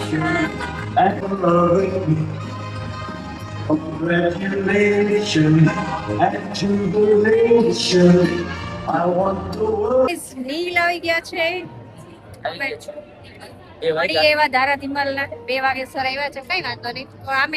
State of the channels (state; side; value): identical; both; correlation 1.00